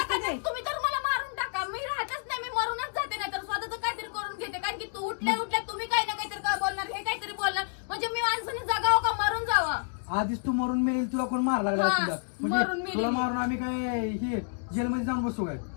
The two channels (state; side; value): silent; right; digital silence